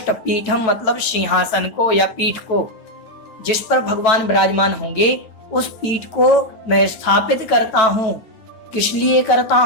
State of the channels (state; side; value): late; right; 9.1 ms